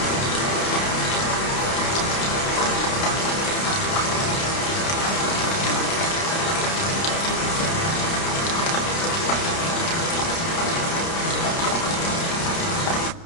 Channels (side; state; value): right; late; 30 ms